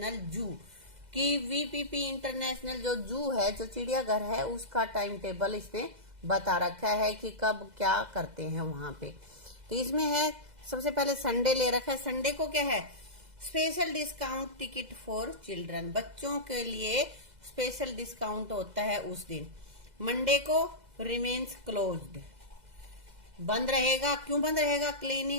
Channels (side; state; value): left; late; 2.0 ms